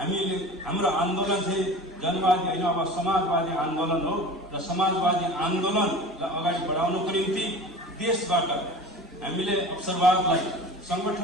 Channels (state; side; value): normal; both; correlation 0.37